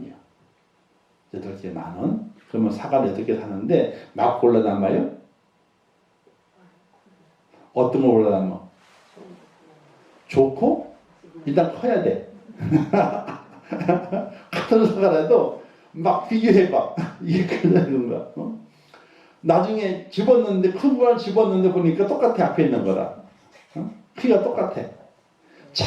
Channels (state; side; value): identical; both; correlation 1.00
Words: 8개에 10,000원. 그러면 사과를 8개 사는데 막 골라 담아요? 어떤 거 골라 담아? 좋고 일단 커야 돼. 같은 사과라도 막 비교해봐. 이게 그런 건가? 나중에 집었는데 큰 거랑 집었는데 보니까 똑같아. 앞에 있는 거랑 키가 똑같아.